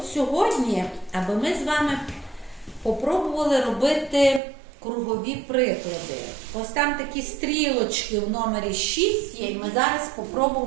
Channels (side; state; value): left; drops out; at 4.4 s